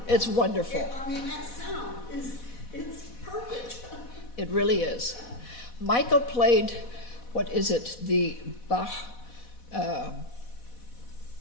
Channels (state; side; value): late; right; 4.1 ms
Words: It's wonderful. I mean, that sound it's perfect. It really is. Michael played, what is it, the Bach,